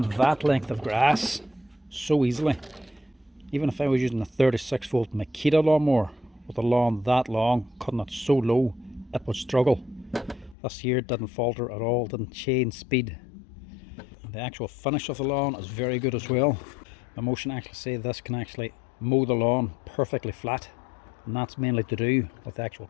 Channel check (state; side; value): drops out; right; at 10.6 s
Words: that length of grass so easily. Even if I was using a 36 volt Makita lawnmower with a lawn that long, cutting it so low, it would struggle. This here didn't falter at all, didn't change speed. And the actual finish of the lawn is very good as well. Mammotion actually say this can actually mow the lawn perfectly flat, and that's mainly to do with the actual